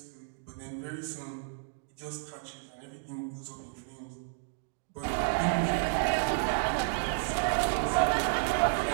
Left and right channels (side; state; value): left; silent; digital silence